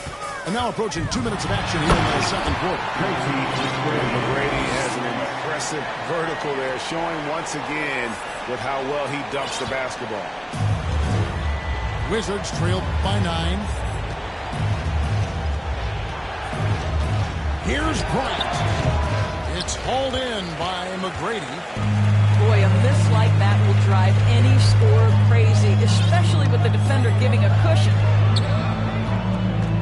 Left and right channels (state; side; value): identical; both; correlation 1.00